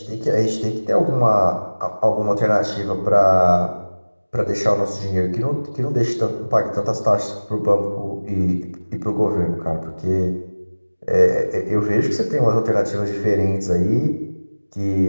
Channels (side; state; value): both; inverted; correlation -1.00